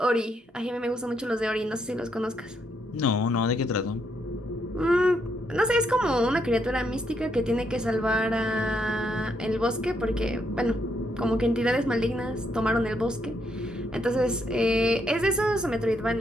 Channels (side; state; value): both; normal; correlation 0.76